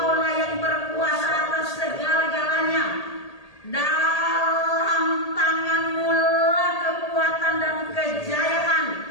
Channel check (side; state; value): right; late; 1.8 ms